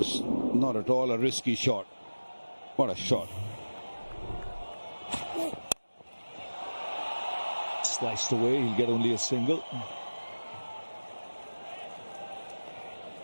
not at all a risky shot. What a shot. Sliced away, he'll get only a single.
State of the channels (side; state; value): both; inverted; correlation -1.00